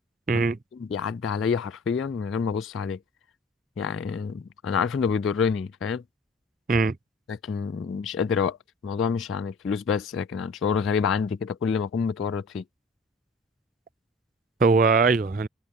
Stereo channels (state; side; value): normal; both; correlation 0.42